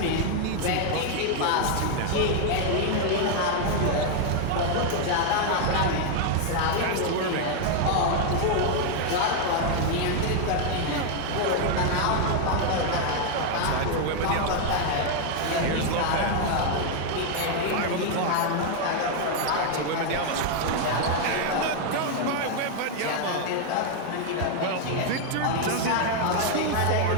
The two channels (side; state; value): both; different; correlation 0.00